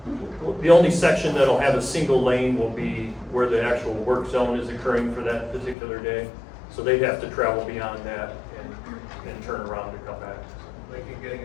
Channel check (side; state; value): right; drops out; at 5.8 s